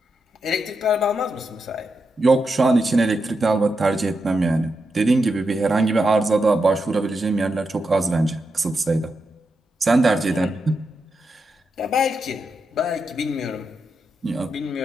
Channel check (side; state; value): both; normal; correlation 0.86